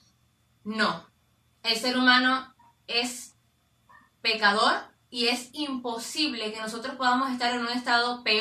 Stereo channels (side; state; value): both; identical; correlation 1.00